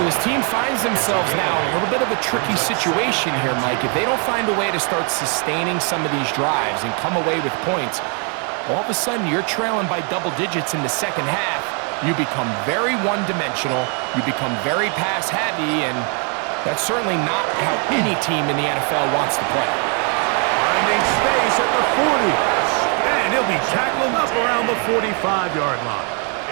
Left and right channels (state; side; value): quieter; left; 38.3 dB